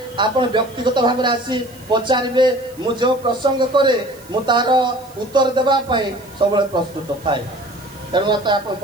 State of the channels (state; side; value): noise; right; hiss, 25 dB below the sound